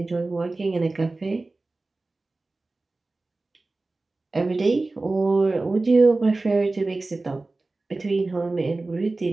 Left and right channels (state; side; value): quieter; left; 3.3 dB